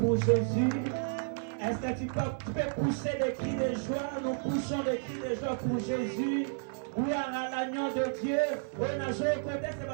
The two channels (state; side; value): silent; left; digital silence